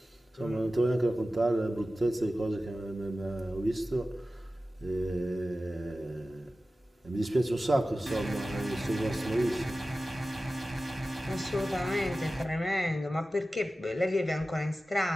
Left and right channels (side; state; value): both; normal; correlation 0.95